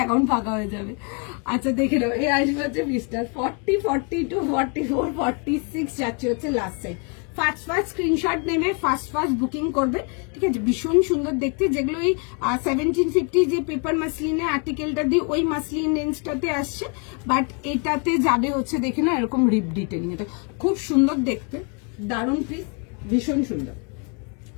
অ্যাকাউন্ট ফাঁকা হয়ে যাবে। আচ্ছা দেখে নাও, এই আসবে হচ্ছে পিসটা 40, 42, 44, 46 যাচ্ছে হচ্ছে লাস্ট সাইড। ফার্স্ট স্ক্রিনশট নেবে, ফার্স্ট বুকিং করবে, ঠিক আছে। ভীষণ সুন্দর দেখতে, যেগুলো ওই 1750 যে পেপার মাসলিনের আর্টিকেলটা দিয়ে ওই মাসলিন রেঞ্জটাতে আসছে, বাট এটাতে যাবে হচ্ছে দেখে না এরকম রিপ ডিটেলিং, এটা খুব সুন্দর দেখতে, দারুণ পিস, ভীষণ সুন্দর।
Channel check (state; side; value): quieter; right; 36.3 dB